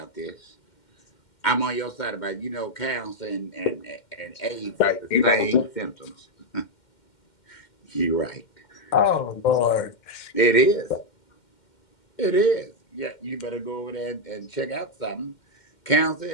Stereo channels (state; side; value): late; right; 2.1 ms